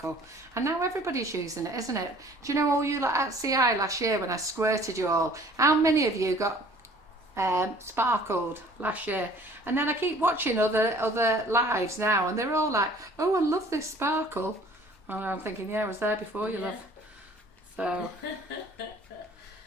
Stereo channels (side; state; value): both; normal; correlation 0.52